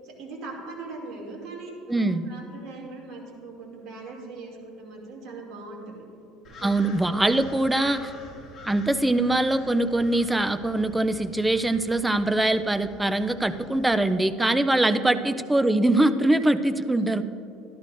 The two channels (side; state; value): both; normal; correlation 0.86